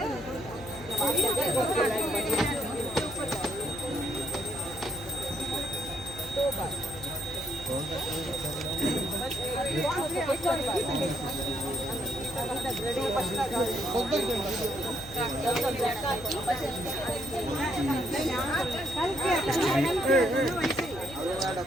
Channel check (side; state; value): left; noise; hum, 16 dB below the sound